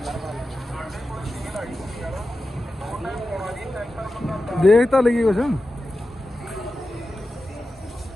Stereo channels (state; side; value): normal; both; correlation 0.93